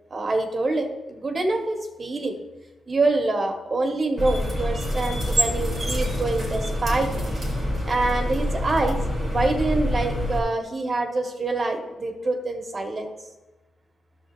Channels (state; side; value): normal; both; correlation 0.90